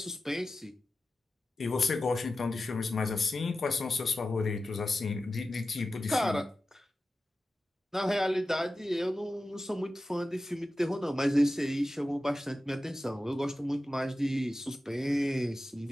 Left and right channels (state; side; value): normal; both; correlation 0.93